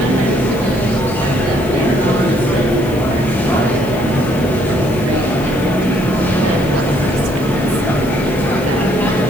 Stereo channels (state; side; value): noise; left; hiss, 19 dB below the sound